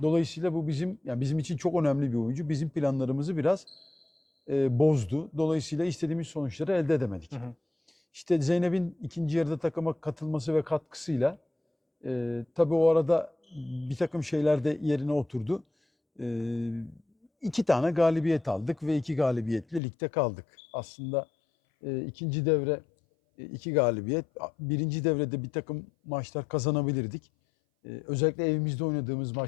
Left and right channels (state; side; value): drops out; right; at 19.8 s